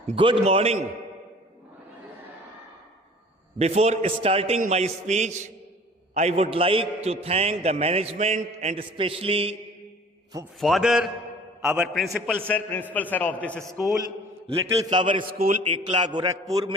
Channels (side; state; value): both; normal; correlation 0.47